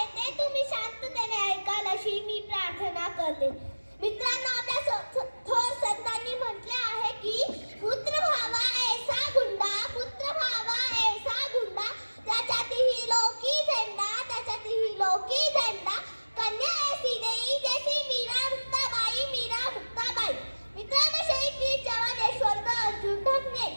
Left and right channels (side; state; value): both; inverted; correlation -1.00